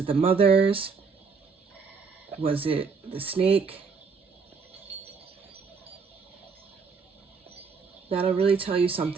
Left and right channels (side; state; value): left; quieter; 5.3 dB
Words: the mothers? Was it the snake? That'll really tell you